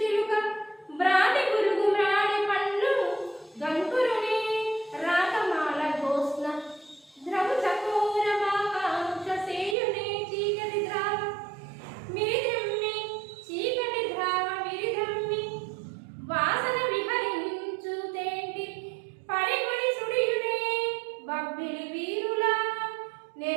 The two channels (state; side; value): drops out; left; at 9.8 s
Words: చిలుక బ్రాతి గురుగు మ్రాణి పండ్లు గంకురుని రాకమాల గోస్న ద్రవు చకోర మాకాంక్ష సేయునే చీకటి ద్రావ మిరిద్రమ్మి చీకటి ద్రావ మిరిద్రమ్మి వాసన విహరించు తేంటి పరిగుడి సుడియునే బబ్బిలి వీరుల